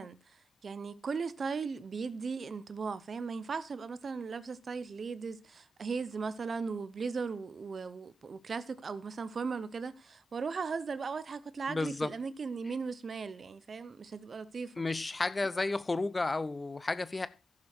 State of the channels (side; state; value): both; normal; correlation 0.90